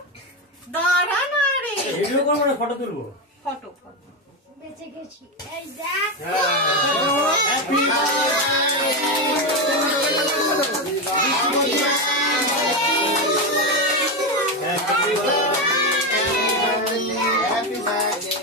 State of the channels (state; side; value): normal; both; correlation 0.11